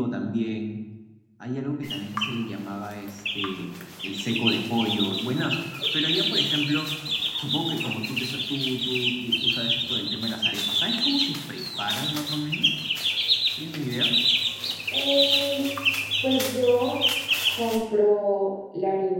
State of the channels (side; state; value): both; identical; correlation 1.00